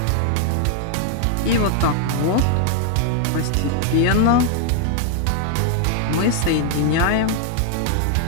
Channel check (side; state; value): both; different; correlation 0.00